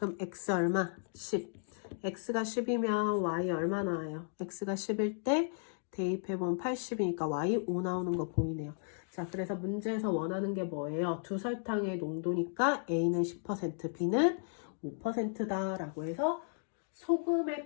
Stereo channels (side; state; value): right; silent; digital silence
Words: x 얼마? 10. x가 10이면 y 얼마 나와요? x가 10일 때 대입해보면 80이니까 y 5 나오는 거 보이네요. 자, 그래서 문제에서 원하는 게 뭐예요? 두 설탕의 농도니까 a는 10%, b는 5%다 라고 해서